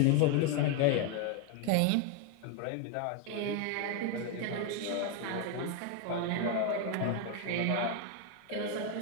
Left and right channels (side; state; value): both; different; correlation 0.01